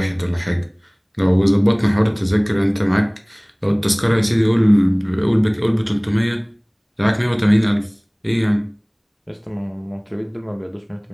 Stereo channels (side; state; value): both; identical; correlation 1.00